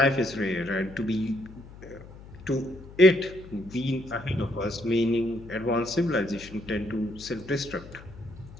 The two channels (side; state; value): left; noise; hum, 18 dB below the sound